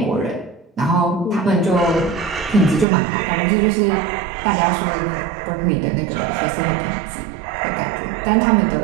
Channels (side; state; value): left; drops out; at 2.9 s